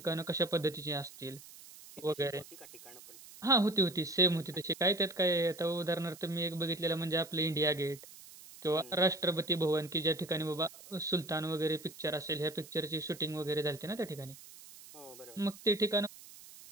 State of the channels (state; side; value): noise; right; hiss, 18 dB below the sound